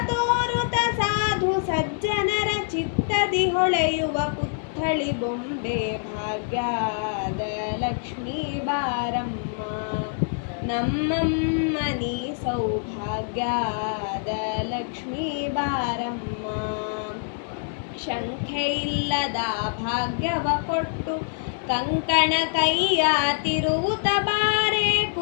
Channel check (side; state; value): right; silent; 58 dB below the other